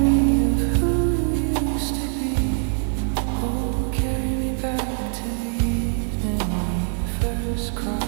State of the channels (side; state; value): left; silent; digital silence